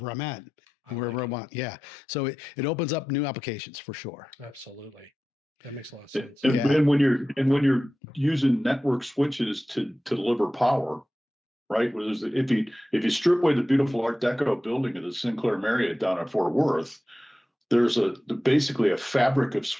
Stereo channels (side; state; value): both; normal; correlation 0.93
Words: I'm at. Wherever I want. Yeah. So it opens up new applications for sure. Absolutely. That makes a lot of sense. And when you're using network switches to deliver power, right? If you strip away the beautiful Art Deco building of the Sinclair Marriott down at Fort Worth, there's basically a fabric of